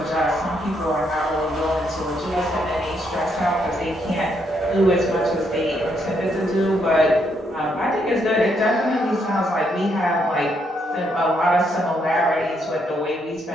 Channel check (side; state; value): both; normal; correlation 0.75